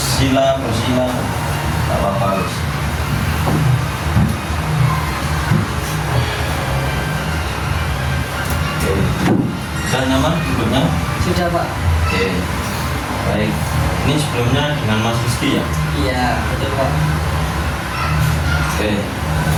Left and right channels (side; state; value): both; identical; correlation 1.00